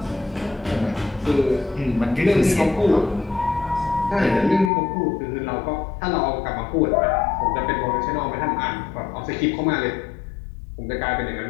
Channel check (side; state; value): right; drops out; at 4.7 s